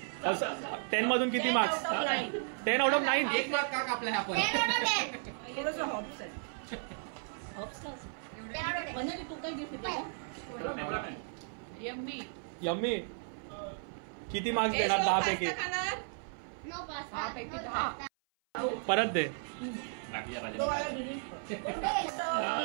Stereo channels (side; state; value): left; silent; 55 dB below the other